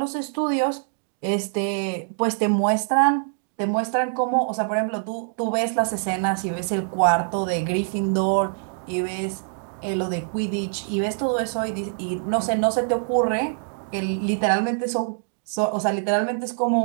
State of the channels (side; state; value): left; silent; digital silence